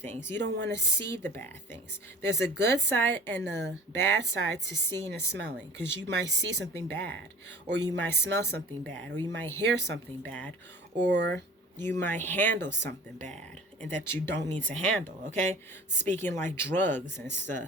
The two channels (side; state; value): both; normal; correlation 0.44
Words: You don't want to see the bad things. There's a good side and a bad side to seeing and smelling, because you might see something bad, or you might smell something bad, or you might hear something bad, or you might handle something bad and that you don't need to handle. Okay, speaking like drugs and